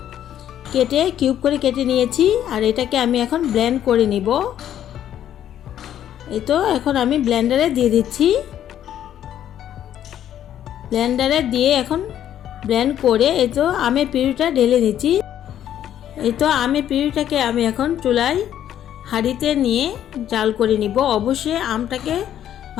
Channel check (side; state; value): right; quieter; 10.8 dB